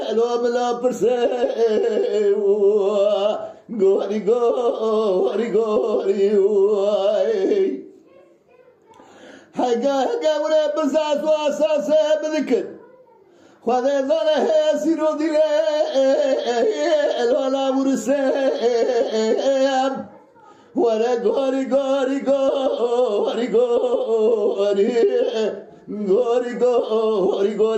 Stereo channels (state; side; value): identical; both; correlation 1.00